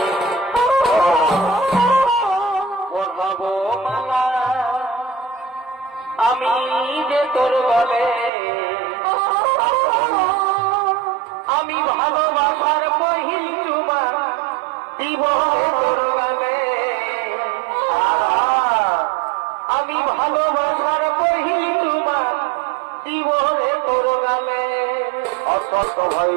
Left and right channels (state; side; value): drops out; left; at 8.3 s